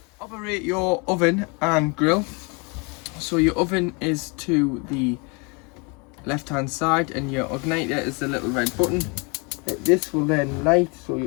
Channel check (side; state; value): right; quieter; 31.3 dB